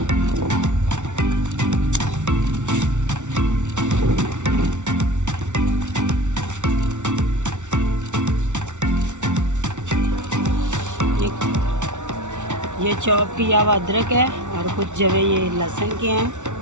ये चॉप किया हुआ अदरक है और कुछ जवे ये लहसुन के हैं।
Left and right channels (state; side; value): late; left; 0.85 ms